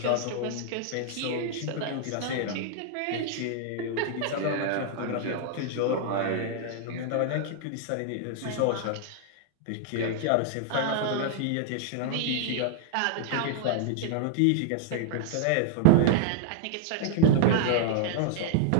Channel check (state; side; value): different; both; correlation -0.01